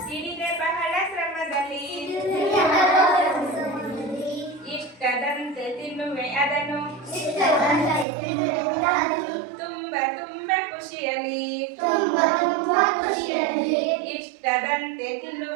ಹಿಡಿದೆ ಬಹಳ ಶ್ರಮದಲ್ಲಿ ಇಷ್ಟದಂತೆ ತಿನ್ನುವೆ ಅದನ್ನು ತುಂಬ ತುಂಬ ಖುಷಿಯಲ್ಲಿ ಇಷ್ಟದಂತೆ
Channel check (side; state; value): left; drops out; at 8.1 s